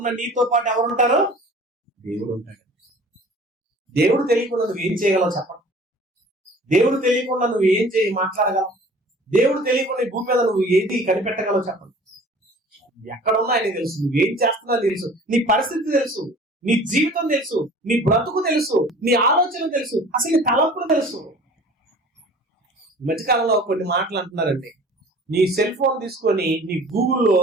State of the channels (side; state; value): both; normal; correlation 0.46